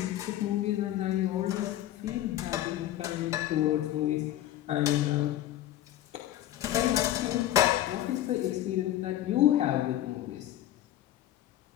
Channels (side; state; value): right; quieter; 13.3 dB